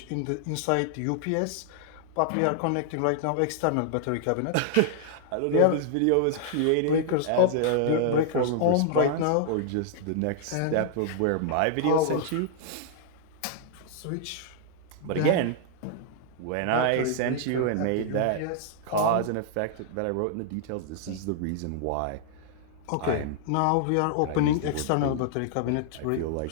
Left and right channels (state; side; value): different; both; correlation -0.01